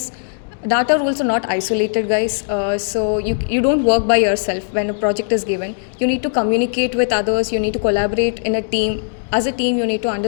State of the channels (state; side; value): silent; right; digital silence